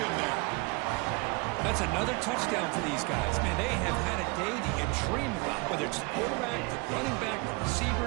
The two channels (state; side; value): quieter; left; 28.5 dB